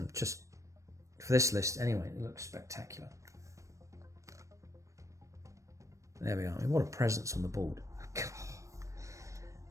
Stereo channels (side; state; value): left; late; 0.15 ms